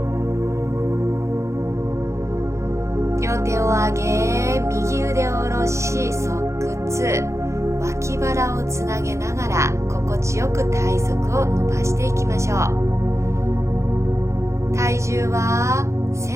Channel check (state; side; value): late; left; 0.14 ms